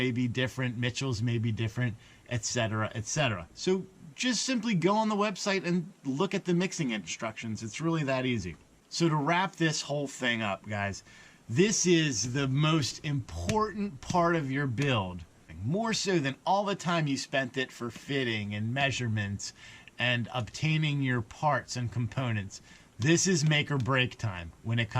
be different, Mitchell's may be different, etc., etc. So just simply go on the website and look at the mixing instructions. It's really that easy. So to wrap this whole thing up, guys, this is the most important part of your build, more so than all the time you spent it for fitting and measurements and obtaining your parts and components. This is make or break time when it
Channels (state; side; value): identical; both; correlation 1.00